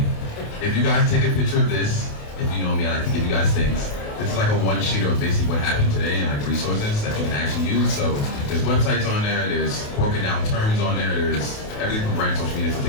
If you guys take a picture of this, if you know me, I like to give you guys things. This is like a one-sheeter of basically what happened today and like resources that you can actually use. So there's websites on there, there's broken down terms on there, there's everything from brand social media. So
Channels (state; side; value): late; right; 28 ms